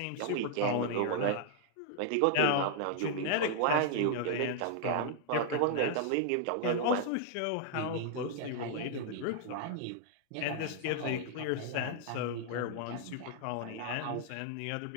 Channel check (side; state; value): both; different; correlation -0.01